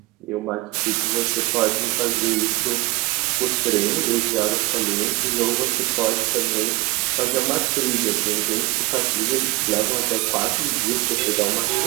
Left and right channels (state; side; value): quieter; left; 21.8 dB